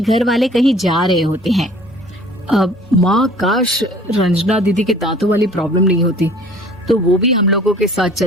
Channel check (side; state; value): both; normal; correlation 0.50